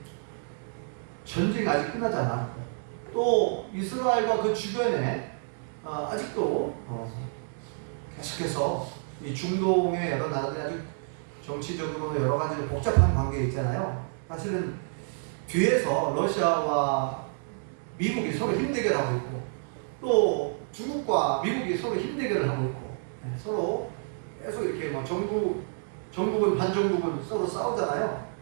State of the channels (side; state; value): left; silent; digital silence